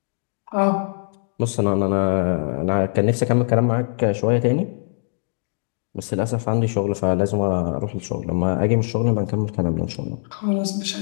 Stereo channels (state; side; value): silent; right; digital silence